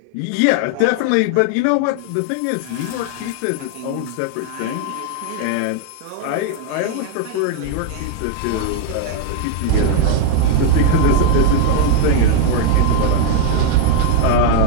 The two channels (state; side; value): different; both; correlation 0.00